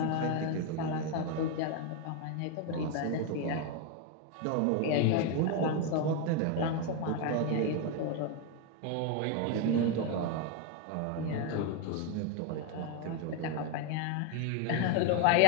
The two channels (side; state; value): both; different; correlation 0.02